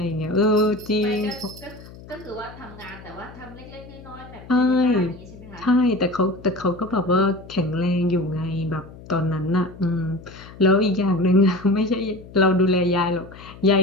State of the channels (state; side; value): noise; left; hum, 18 dB below the sound